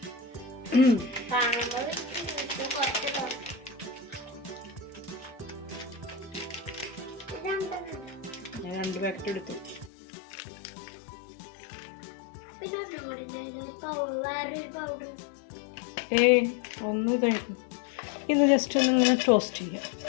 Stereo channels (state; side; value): drops out; right; at 9.9 s